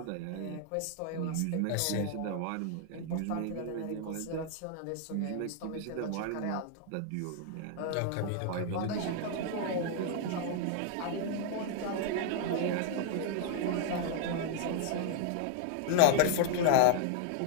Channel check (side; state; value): both; different; correlation 0.00